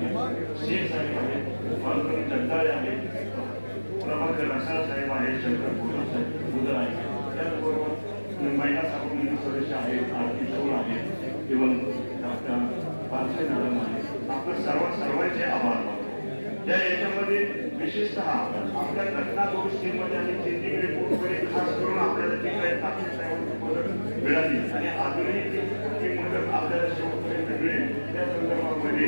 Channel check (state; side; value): inverted; both; correlation -1.00